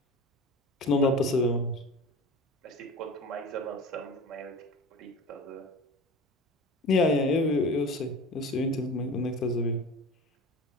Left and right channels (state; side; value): normal; both; correlation 0.35